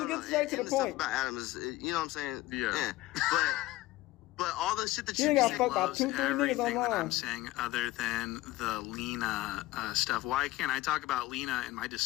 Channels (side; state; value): right; quieter; 17.8 dB